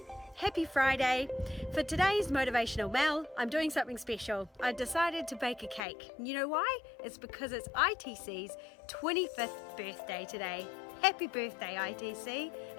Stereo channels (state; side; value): drops out; right; at 5.8 s